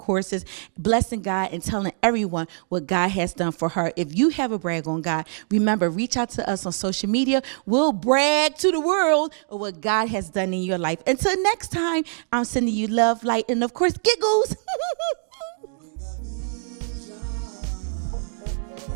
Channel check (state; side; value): silent; left; 63 dB below the other